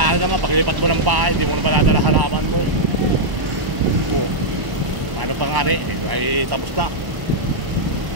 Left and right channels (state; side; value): late; left; 1.0 ms